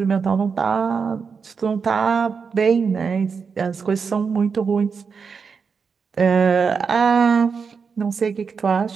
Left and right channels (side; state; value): left; quieter; 5.6 dB